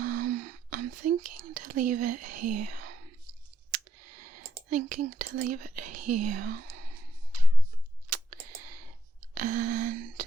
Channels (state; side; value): normal; both; correlation 0.77